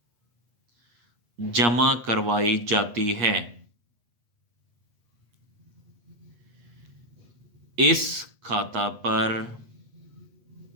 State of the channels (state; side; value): late; left; 8.4 ms